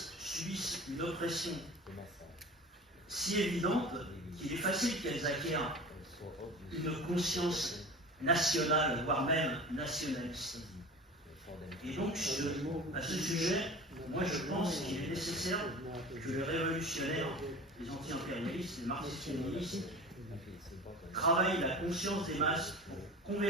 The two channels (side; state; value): both; normal; correlation 0.36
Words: subissent une oppression si évidente qu'il est facile qu'elles acquièrent une conscience nationale, voire même nationaliste. Et donc, à ce sujet, moi je pense qu'il est nécessaire que les révolutionnaires, les anti-impérialistes, les marxistes-léninistes, travaillent la conscience des masses pour